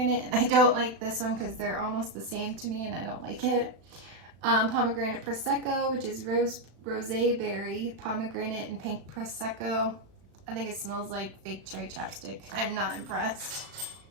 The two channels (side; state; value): left; late; 36 ms